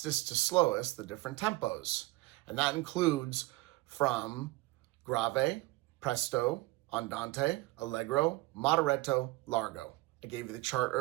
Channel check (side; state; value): left; quieter; 20.2 dB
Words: to slowest the different tempos. And that includes from grave, presto, andante, allegro, moderato, largo. I gave you the chart